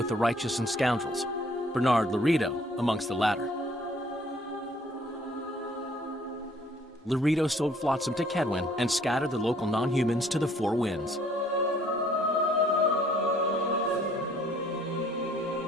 the righteous and scoundrels, Bernard Laredo amongst the latter. Laredo sold Flotsam to Kedwin and scattered the local non-humans to the four winds.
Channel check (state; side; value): normal; both; correlation 0.60